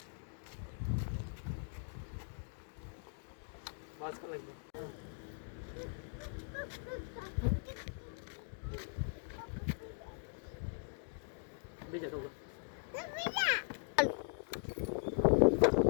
બસ કલાક બીજા સૌ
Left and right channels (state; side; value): silent; right; digital silence